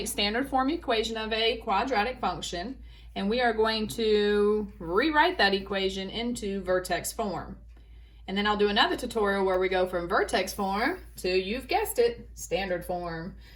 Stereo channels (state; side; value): identical; both; correlation 1.00